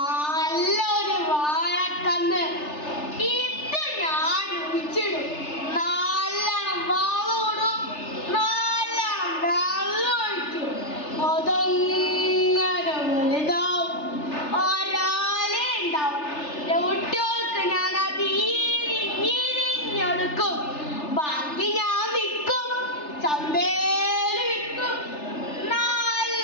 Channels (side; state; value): right; late; 3.3 ms